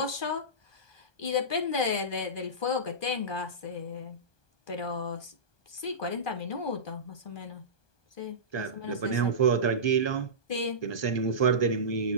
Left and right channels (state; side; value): late; right; 1.2 ms